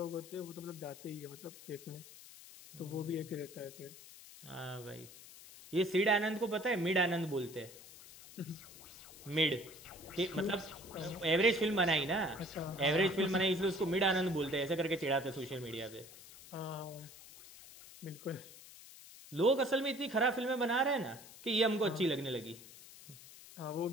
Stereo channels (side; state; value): left; noise; hiss, 18 dB below the sound